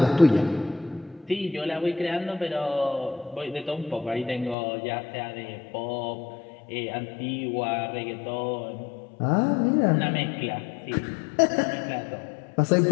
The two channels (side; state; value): right; drops out; at 4.5 s